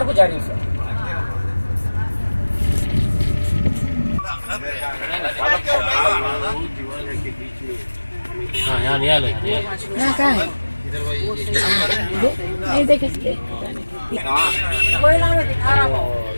को जा रही हूँ हाँ यहाँ नहीं आना कहाँ है नहीं देखे कोई नाम दिखा रहा हूँ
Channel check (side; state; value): both; inverted; correlation -1.00